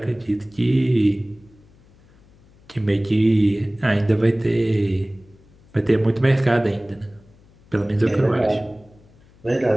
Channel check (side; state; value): left; noise; hum, 28 dB below the sound